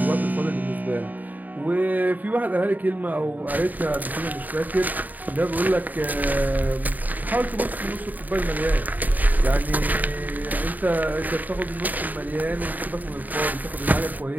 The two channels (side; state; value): left; late; 0.083 ms